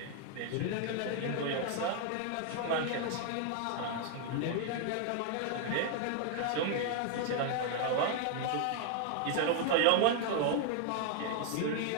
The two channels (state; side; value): different; both; correlation 0.00